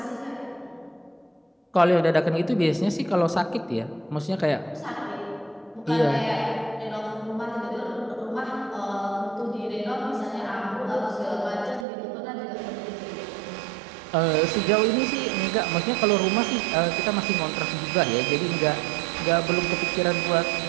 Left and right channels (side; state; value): left; drops out; at 11.9 s